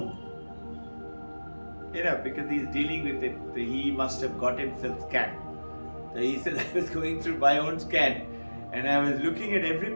because he's dealing with it, he must have got himself scanned. So he said, I was going through my own scan and I was looking at every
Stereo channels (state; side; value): inverted; both; correlation -1.00